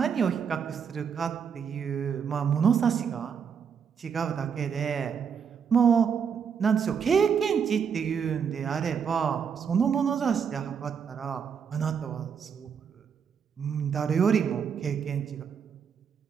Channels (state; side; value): quieter; left; 7.0 dB